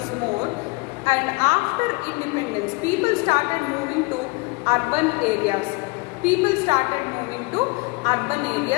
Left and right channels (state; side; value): quieter; right; 26.7 dB